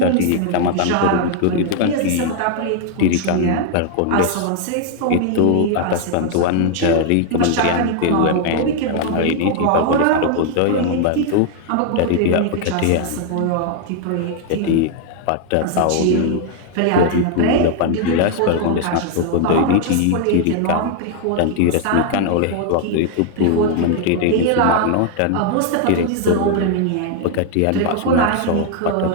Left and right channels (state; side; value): different; both; correlation 0.00